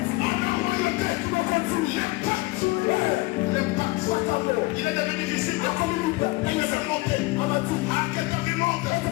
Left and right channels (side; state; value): right; quieter; 22.4 dB